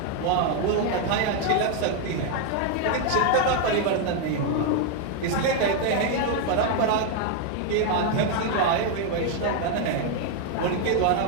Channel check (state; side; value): different; both; correlation 0.00